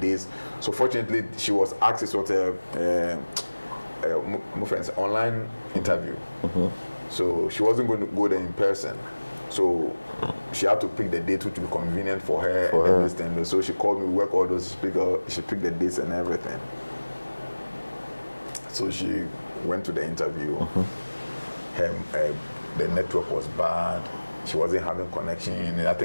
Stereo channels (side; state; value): both; inverted; correlation -1.00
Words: So fortunately, she was asked, it was my friend's online interview. So she wasn't going to go there in person. So she had to pick the date which would be convenient for her and everything. So she called me, we work all those, she picked the dates and everything. So she went to the interview. The network was bad. She wasn't having connection. I